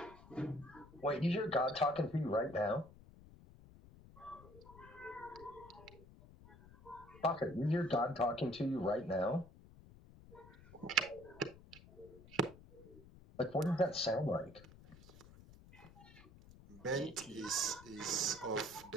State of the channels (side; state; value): left; noise; rumble, 20 dB below the sound